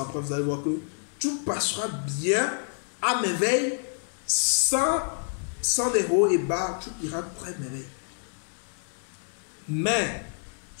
après, vous allez voir que tout passera bien, à merveille, sans des hauts et bas, tout ira très merveille. Mais,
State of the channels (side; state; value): right; silent; digital silence